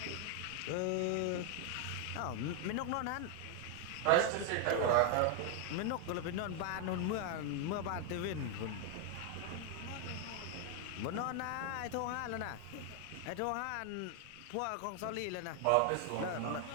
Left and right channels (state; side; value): different; both; correlation 0.01